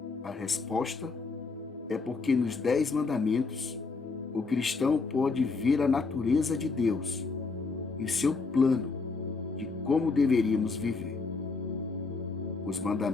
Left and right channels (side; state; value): right; quieter; 4.2 dB